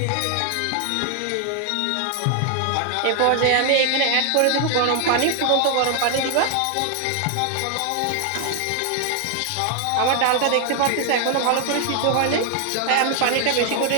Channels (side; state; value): both; different; correlation 0.00